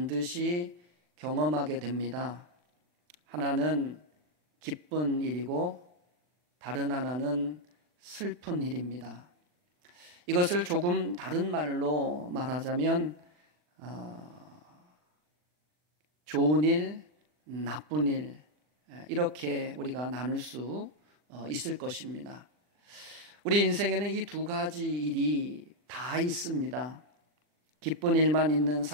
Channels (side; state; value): left; late; 40 ms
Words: 경험하게 됩니다. 하나는 기쁜 일이고 다른 하나는 슬픈 일입니다. 이것을 조금 다른 말로 말하자면 좋은 일, 나쁜 일, 이렇게 우리가 나눌 수 있을 것입니다. 우리 인생에는 이 두 가지 일이 다 있습니다. 기쁜 일만 있는